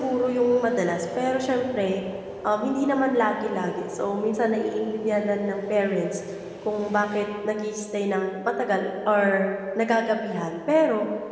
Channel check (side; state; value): both; identical; correlation 1.00